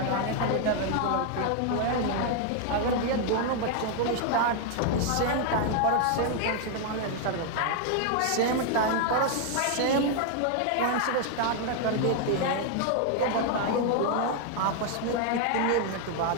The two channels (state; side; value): different; both; correlation 0.00